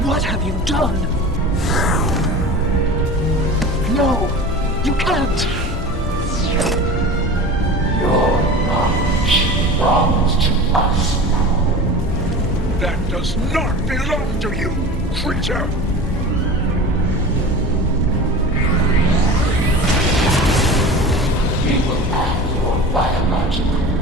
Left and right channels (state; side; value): normal; both; correlation 0.34